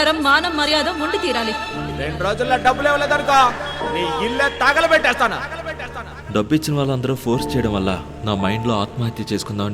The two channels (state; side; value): identical; both; correlation 1.00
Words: మానం మర్యాద ఉండి తీరాలి. 2 రోజుల్లో డబ్బులు ఇవ్వలేదనుకో నీ ఇల్లే తగలబెట్టేస్తాను. డబ్బు ఇచ్చిన వాళ్ళందరూ ఫోర్స్ చేయడం వల్ల నా మైండ్లో ఆత్మహత్య